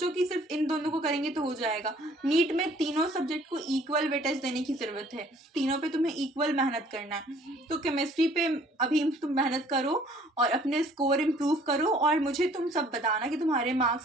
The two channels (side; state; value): both; normal; correlation 0.57